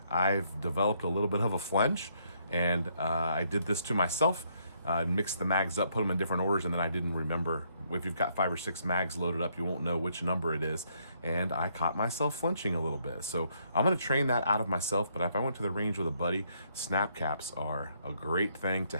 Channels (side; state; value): both; inverted; correlation -0.71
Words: I've developed a little bit of a flinch, and I did this to myself. Mix the mags up, put them in different orders, and then I didn't remember. If you've got 5 or 6 mags loaded up, you won't know which number it is, and I caught myself flinching a little bit. So I'm gonna train that out of myself, but if I went to the range with a buddy, snap caps are a great thing to